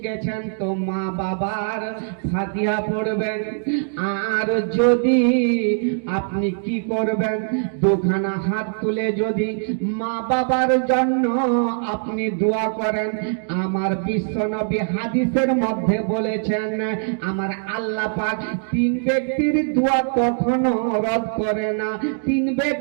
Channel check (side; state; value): left; silent; digital silence